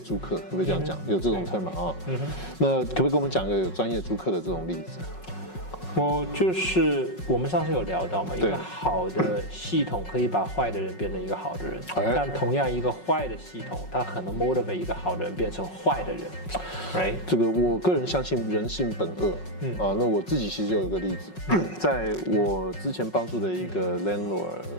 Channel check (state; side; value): late; right; 5.4 ms